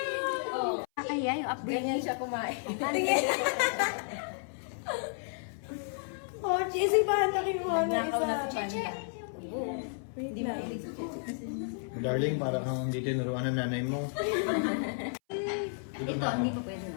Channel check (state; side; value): silent; right; 56 dB below the other